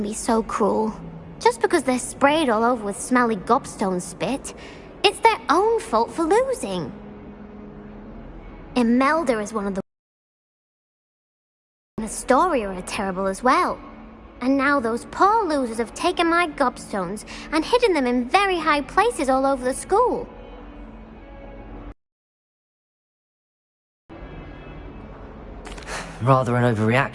be so cruel. Just because they're sprayed all over with smelly gobstone spit, it's their own fault for losing. Imelda is one of the... Astoria are terrible as well. And now those poor losers have taken my gobstones and hidden them in very high places all over the school. Rather an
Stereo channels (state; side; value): identical; both; correlation 1.00